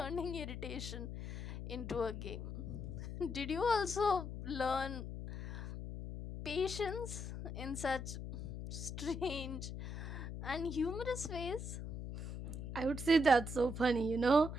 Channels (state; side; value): noise; left; hum, 7 dB below the sound